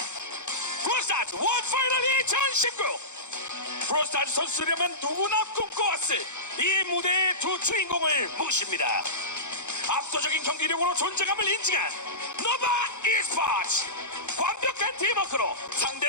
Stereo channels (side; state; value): right; late; 0.83 ms